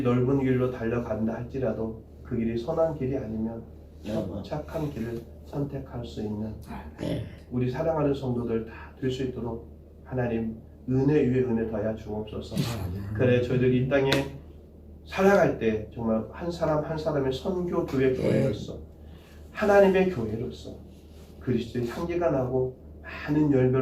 넓은 길로 달려간다 할지라도 그 길이 선한 길이 아니면 착한 길을 선택할 수 있는 우리 사랑하는 성도들 다 될 수 있도록 하나님 은혜 위에 은혜 더하여 주옵소서. 그래 저희들이 이 땅에 살아갈 때 정말 한 사람 한 사람의 선교 교회 교회로서 하나님의 교회로서 그리스도의 향기가 나고 많은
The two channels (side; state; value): both; identical; correlation 1.00